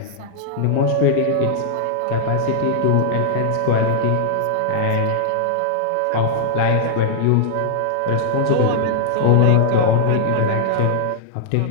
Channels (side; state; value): both; different; correlation -0.01